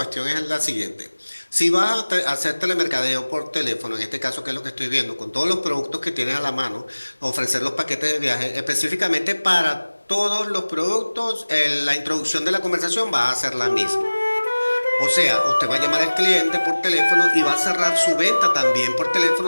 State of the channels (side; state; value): both; inverted; correlation -1.00